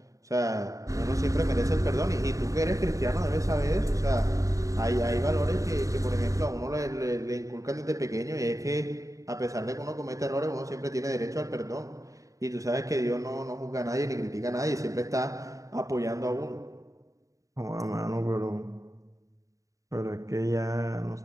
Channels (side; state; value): left; late; 0.16 ms